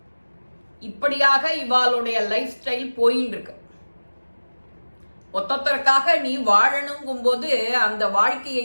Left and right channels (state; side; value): inverted; both; correlation -1.00